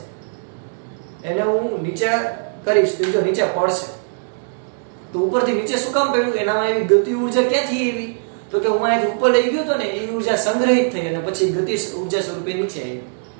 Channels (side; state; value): left; silent; digital silence